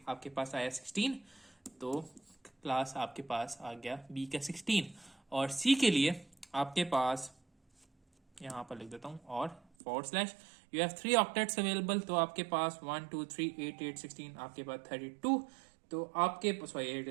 आपके पास आया 16, तो क्लास आपके पास आ गया बी का 16। और सी के लिए आपके पास यहाँ पर लिख देता हूँ, और forward slash U have 3 octets available, तो आपके पास 1 2 3 8 8 16 आपके पास 32, तो आपके पास 8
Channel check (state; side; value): drops out; left; at 9.6 s